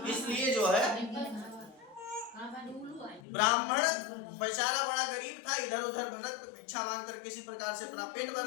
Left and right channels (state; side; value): drops out; right; at 3.2 s